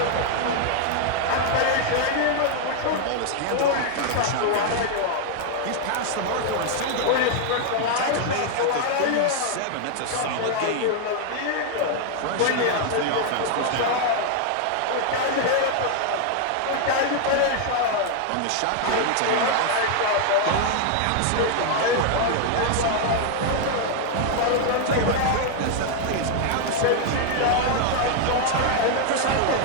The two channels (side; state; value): both; different; correlation 0.00